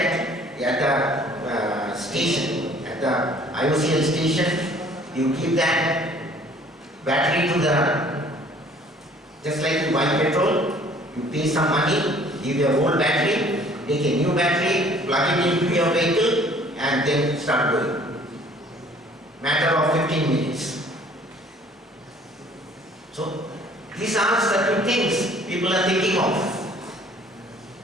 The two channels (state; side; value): normal; both; correlation 0.55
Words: at the station, at the IOCL station, you give that battery to the, just like you buy petrol, you pay some money, give your old battery, take a new battery, plug it into your vehicle and then start going. Matter of 15 minutes. So these are certain things people are thinking of.